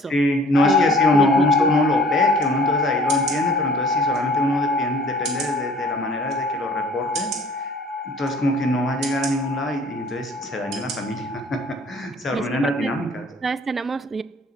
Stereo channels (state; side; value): normal; both; correlation 0.52